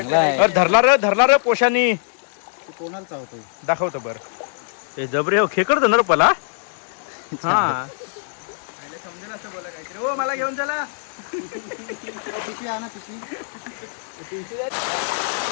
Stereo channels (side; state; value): right; silent; digital silence